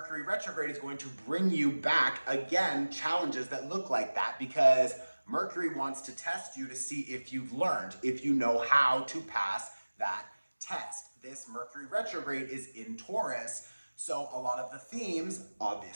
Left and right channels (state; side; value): inverted; both; correlation -1.00